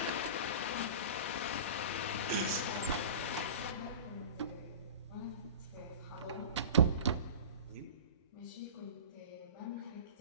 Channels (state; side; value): inverted; both; correlation -0.36